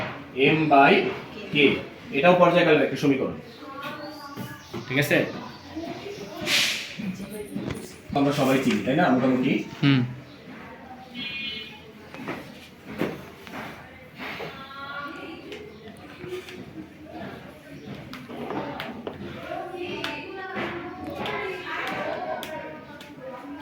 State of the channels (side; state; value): both; identical; correlation 1.00